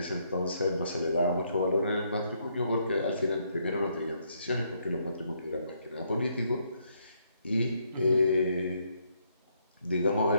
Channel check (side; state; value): both; inverted; correlation -0.73